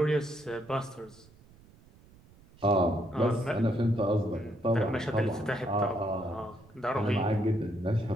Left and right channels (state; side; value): noise; right; rumble, 26 dB below the sound